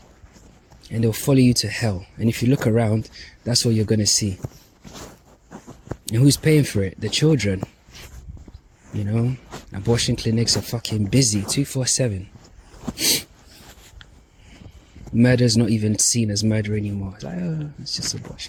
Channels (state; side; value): identical; both; correlation 1.00